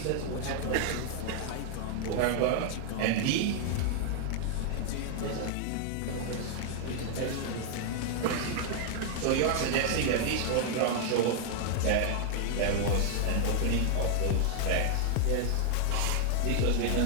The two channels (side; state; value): both; different; correlation 0.00